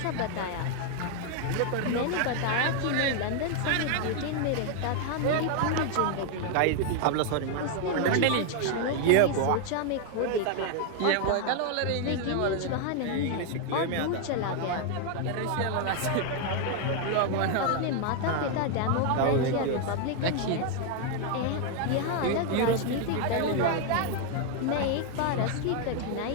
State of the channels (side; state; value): both; different; correlation 0.00